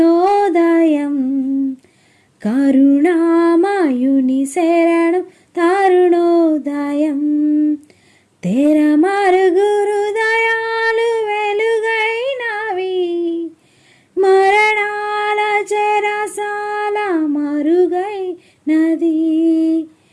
కరుణామయుని శరణు తరుణోదయం. తెర మరుగురు దయాలు వెలుగైనవి, మరణాల చెరసాల మరుగైనది.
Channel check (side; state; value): both; identical; correlation 1.00